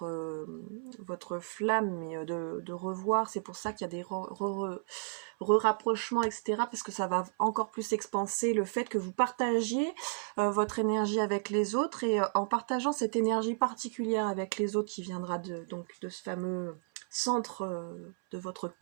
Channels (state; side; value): silent; left; 56 dB below the other